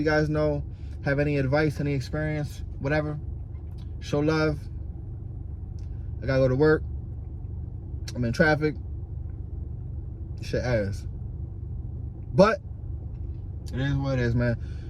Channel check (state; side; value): identical; both; correlation 1.00